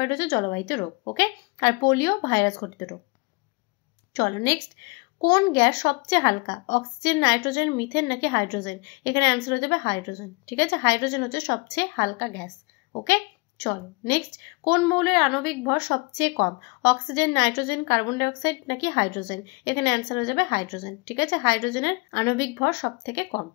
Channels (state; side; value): quieter; right; 28.0 dB